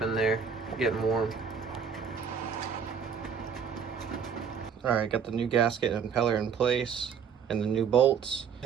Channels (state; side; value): quieter; left; 6.8 dB